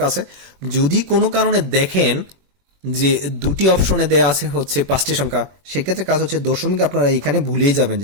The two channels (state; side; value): late; left; 21 ms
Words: আছে। যদি কোনো কারণে দেখেন যে দুটি অপশনে দেয়া আছে হচ্ছে 5টি সংখ্যা, সেক্ষেত্রে কাজ হচ্ছে দশমিক আপনারা এখানে ভুলেই যাবেন যে